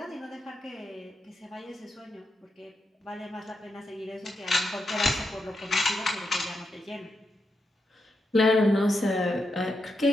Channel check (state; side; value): normal; both; correlation 0.84